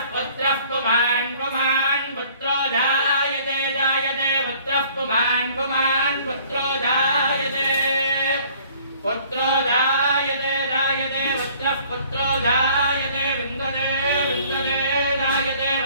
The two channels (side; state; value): both; inverted; correlation -0.55